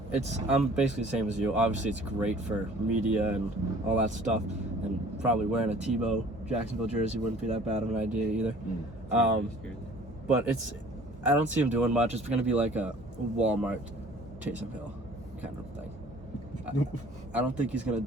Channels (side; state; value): both; normal; correlation 0.51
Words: basically the same as you. Obviously, it's great for media and all that stuff, and probably wearing a Tebow Jacksonville jersey wouldn't be that bad of an idea either. But I don't see him doing much. It's going to be like a Walmart Taysom Hill kind of thing. I don't think he's going to